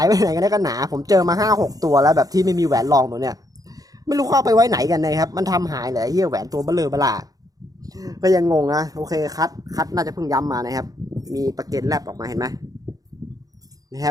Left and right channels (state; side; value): late; left; 0.18 ms